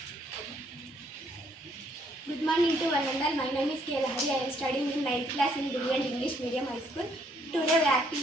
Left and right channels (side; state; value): both; normal; correlation 0.68